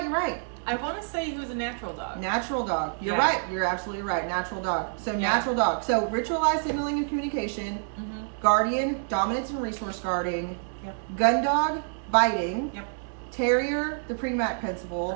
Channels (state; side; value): silent; left; digital silence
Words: I want to say he was a natural dog. Natural dog. You're right. You're absolutely right. Natural dog. So natural dog. So ritualized signaling and communication. Mm-hmm. Guardian, dominance and resource guarding. Yep. Gun dog, biting. Yep. Terrier, the Premack principle.